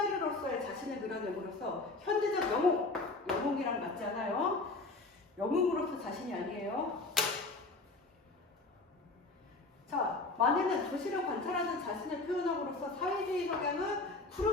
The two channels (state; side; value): quieter; right; 3.4 dB